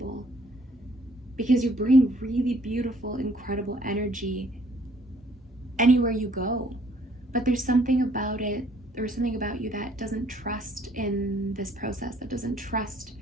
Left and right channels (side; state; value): both; normal; correlation 0.62